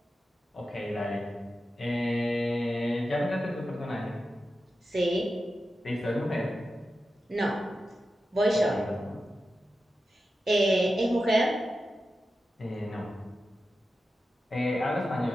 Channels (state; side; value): normal; both; correlation 0.91